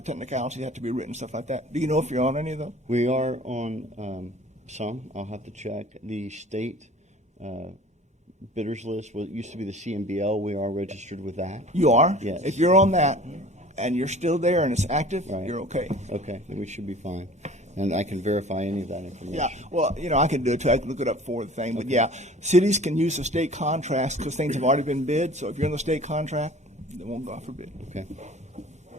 technicalities have to be written, stuff like that. Do you know if you're on any of those? We are on some. I'll have to check. The state bidders list, what used to be the CMBL, we are registered with that. You are. Yes. If you're on that and you're still there and it's active, Right. you're okay. Okay, then we should be fine. And I can verify any of that information. Yeah, well, I can do it too. I can look it up for the thing. But yeah, cities can use the state contracts because things have already been bid. So if you're in the state contract, they won't go out for bid. Okay.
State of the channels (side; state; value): both; normal; correlation 0.46